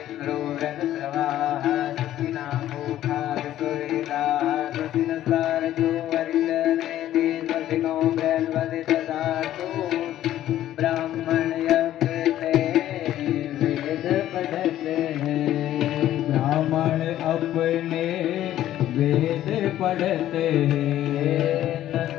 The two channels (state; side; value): quieter; right; 12.8 dB